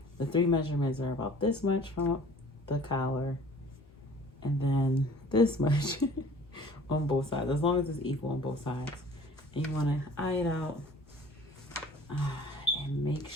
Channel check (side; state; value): both; normal; correlation 0.49